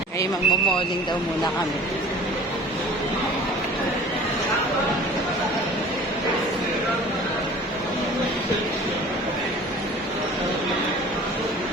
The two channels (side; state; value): both; normal; correlation 0.45